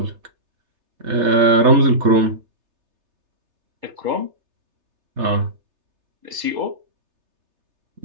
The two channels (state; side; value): late; left; 3.3 ms